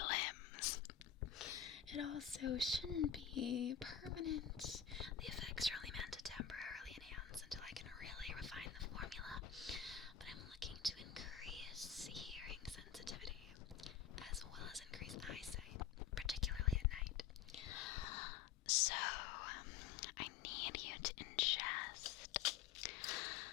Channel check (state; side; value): quieter; right; 8.6 dB